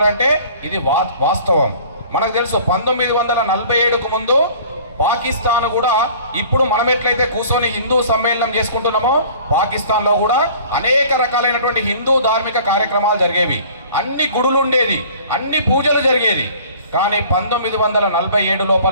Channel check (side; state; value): both; inverted; correlation -0.49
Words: ఇది వాస్తవం. మనకు తెలుసు, 1947కు ముందు పాకిస్తాన్ కూడా ఇప్పుడు మనం ఎట్లయితే కూర్చొని హిందూ సమ్మేళనం చేసుకుంటున్నామో, పాకిస్తాన్లో కూడా అనేక రకాలైనటువంటి హిందూ ధార్మిక కార్యక్రమాలు జరిగేవి. అన్ని గుడులు ఉండేది, అన్ని పూజలు జరిగేది. కానీ 1947